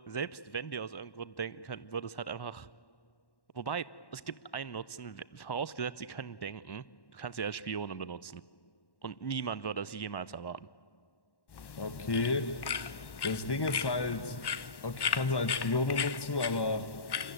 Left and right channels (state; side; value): late; right; 1.1 ms